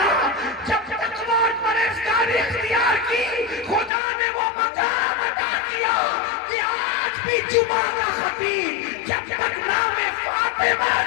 جب تقویٰ اور پرہیزگاری اختیار کی خدا نے وہ مقام عطا کیا کہ آج بھی جمعہ کا خطیب جب تک نام فاطمہ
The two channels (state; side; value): drops out; right; at 3.9 s